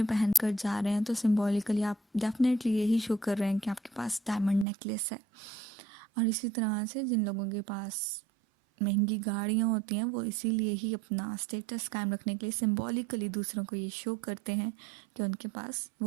पहन कर जा रहे हैं तो सिम्बॉलिकली आप डेफिनेटली यही शो कर रहे हैं कि आपके पास डायमंड नेकलेस है. और इसी तरह से जिन लोगों के पास महंगी गाड़ियाँ होती हैं वो इसीलिए ही अपना स्टेटस कायम रखने के लिए सिम्बॉलिकली दूसरों को ये शो करते हैं कि उनके पास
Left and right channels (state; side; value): drops out; left; at 4.7 s